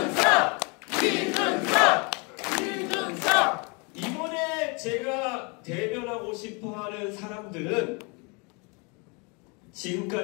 이번에 제가 대변하고 싶어하는 사람들은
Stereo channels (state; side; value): quieter; right; 32.0 dB